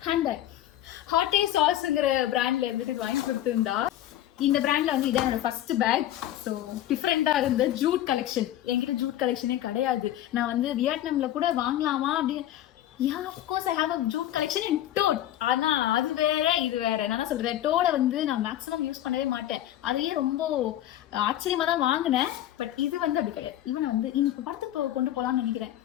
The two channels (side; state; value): right; quieter; 12.8 dB